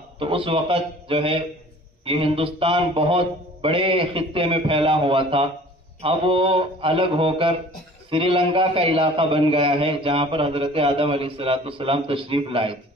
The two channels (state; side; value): normal; both; correlation 0.48